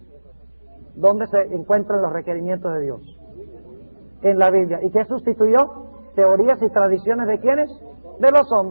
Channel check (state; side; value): inverted; both; correlation -1.00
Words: ¿Dónde se encuentran los requerimientos de Dios? En la Biblia. ¿Y qué sustituyó? Teorías y tradiciones ¿de quiénes? De los